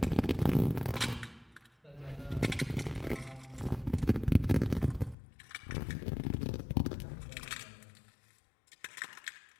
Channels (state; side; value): drops out; right; at 5.2 s